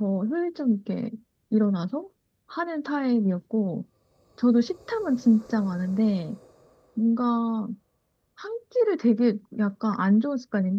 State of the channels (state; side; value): identical; both; correlation 1.00